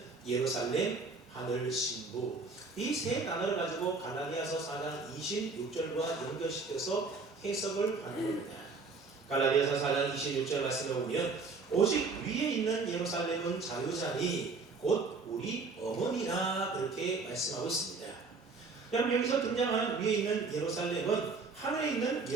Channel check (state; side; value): quieter; left; 4.1 dB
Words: 예루살렘, 하늘, 신부 이 세 단어를 가지고 갈라디아서 4장 26절과 연결시켜서 해석을 하는 겁니다. 갈라디아서 4장 26절 말씀에 보면 오직 위에 있는 예루살렘은 자유자니 곧 우리 어머니라 그렇게 말씀하고 있습니다. 그럼 여기서 등장하는 위에 있는 예루살렘은 하늘에 있는